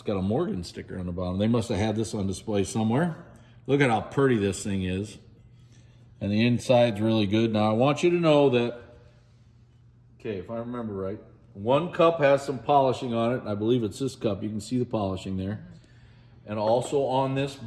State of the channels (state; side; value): identical; both; correlation 1.00